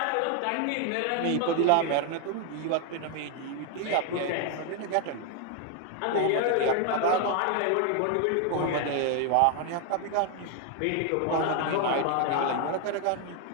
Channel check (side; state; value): both; different; correlation 0.01